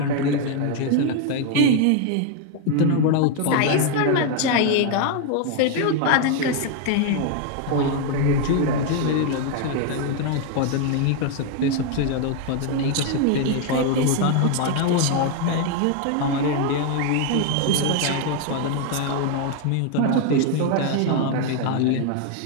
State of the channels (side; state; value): both; different; correlation 0.01